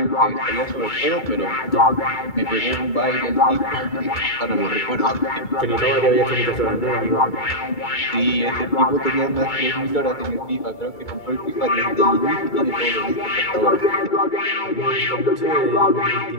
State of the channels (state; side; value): late; right; 2.3 ms